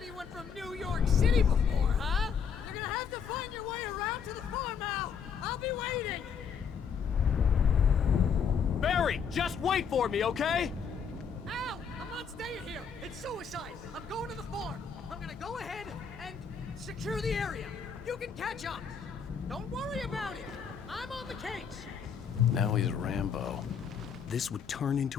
from New York City before, huh? You're gonna have to find your way around to the farm, Al! I'll be waiting! Barry, just wait for me, okay? Al! I'm not staying here! It's suicide! I'm going to the farm! I'm gonna go ahead and secure the area! You can catch up! Don't worry about it! I'm on the case! Now he's Rambo. This would turn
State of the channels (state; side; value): quieter; right; 6.6 dB